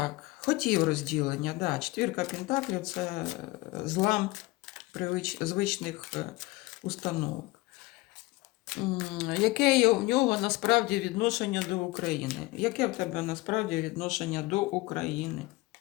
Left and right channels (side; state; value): right; quieter; 21.6 dB